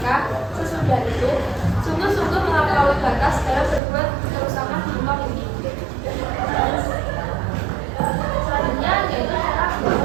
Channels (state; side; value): drops out; left; at 3.8 s